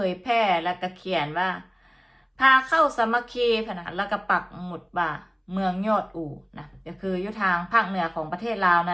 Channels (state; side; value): identical; both; correlation 1.00